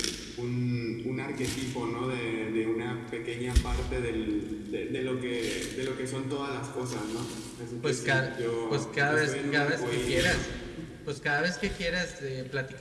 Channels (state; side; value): identical; both; correlation 1.00